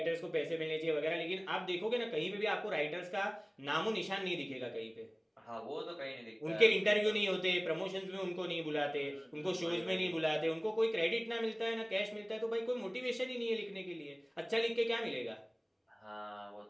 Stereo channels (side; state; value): both; identical; correlation 1.00